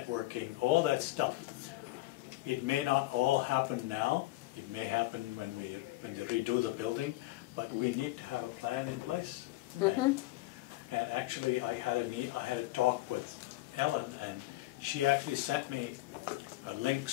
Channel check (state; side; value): quieter; right; 18.4 dB